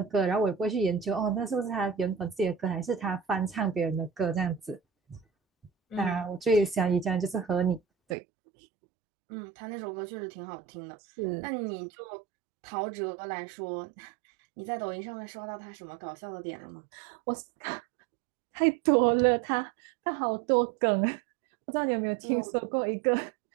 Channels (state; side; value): drops out; left; at 8.2 s